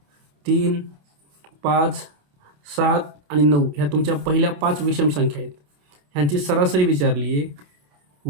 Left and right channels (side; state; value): left; late; 27 ms